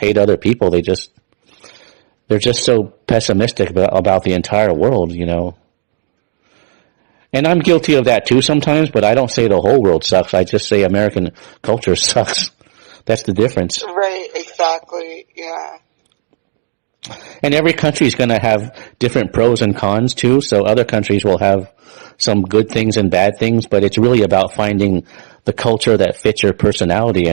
other people. They're just so pessimistic about the entire world. And I'm guilty of that too sometimes, but I don't say the whole world sucks. I just say American culture sucks. That's the difference. Right, exactly. Yeah. And every country is going to have different pros and cons too. So other countries will have some good things and bad things, but it's really about finding the culture that fits your personality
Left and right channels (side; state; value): left; silent; digital silence